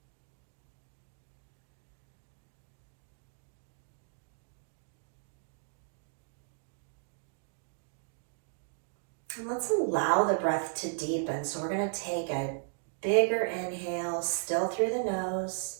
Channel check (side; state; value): left; silent; digital silence